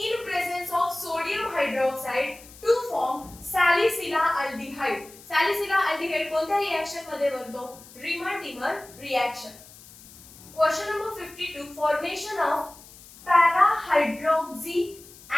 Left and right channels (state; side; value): noise; left; hiss, 21 dB below the sound